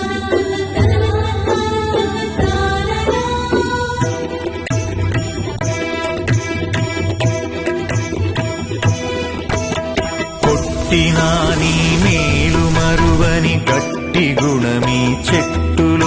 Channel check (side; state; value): both; identical; correlation 1.00